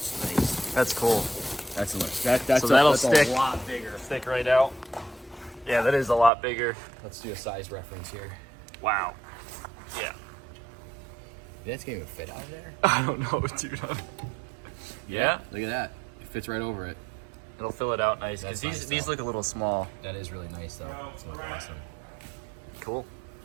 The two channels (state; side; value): drops out; left; at 6.3 s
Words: nice. That's cool. That's that's So that'll that's stick. a lot bigger. Stick right out. Yeah, that is a lot bigger. Let's do a size reference here. Wow. Yeah. That's gonna even fit out there. I don't know, dude. Yeah. Look at that. It fits right over it. It'll fill it out nice because That's nice, these though. look a little small. That is really nice, though. It's looking awesome. Cool.